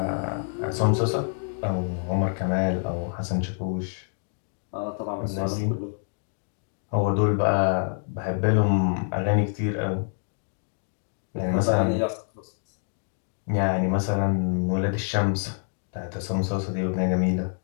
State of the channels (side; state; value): right; silent; 60 dB below the other